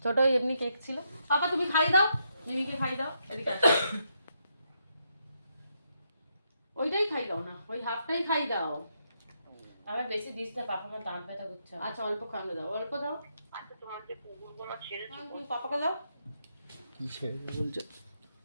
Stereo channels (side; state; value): both; inverted; correlation -0.78